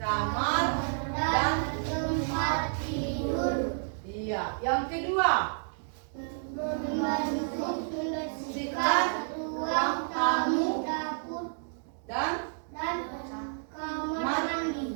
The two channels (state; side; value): silent; left; digital silence